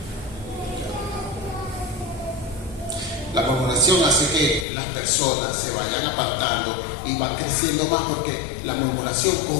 La murmuración hace que las personas se vayan apartando y van creciendo más, porque la murmuración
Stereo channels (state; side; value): drops out; right; at 4.7 s